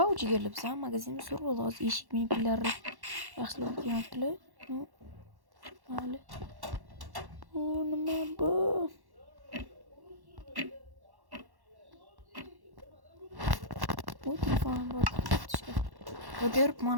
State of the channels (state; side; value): late; left; 1.1 ms